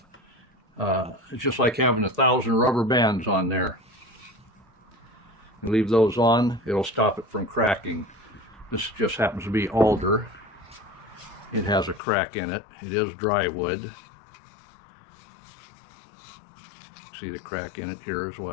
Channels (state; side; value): drops out; right; at 12.0 s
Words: it's just like having 1,000 rubber bands on there. You leave those on, it'll stop it from cracking. This just happens to be alder. It has a crack in it. It is dry wood. See the crack in it here as